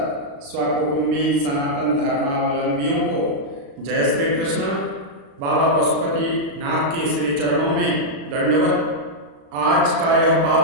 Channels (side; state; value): left; late; 36 ms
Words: स्वकुटुंबी सनातन धर्मावलंबियों को जय श्री कृष्ण। बाबा पशुपति नाथ के श्री चरणों में दंडवत। आज का यह